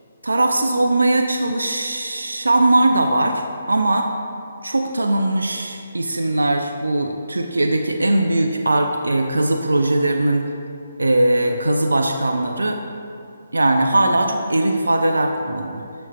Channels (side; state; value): both; inverted; correlation -0.92